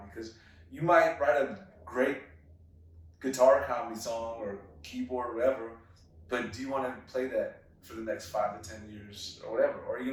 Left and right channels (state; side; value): identical; both; correlation 1.00